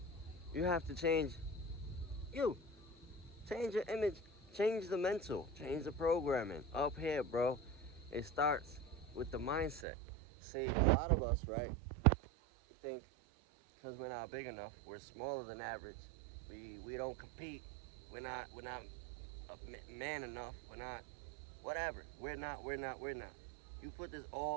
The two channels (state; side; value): drops out; left; at 9.9 s